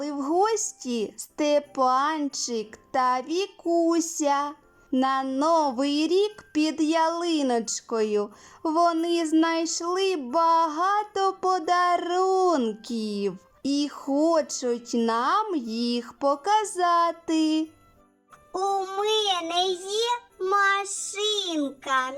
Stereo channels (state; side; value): identical; both; correlation 1.00